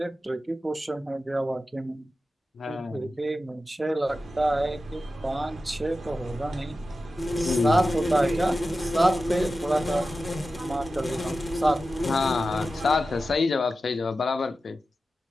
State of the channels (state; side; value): normal; both; correlation 0.93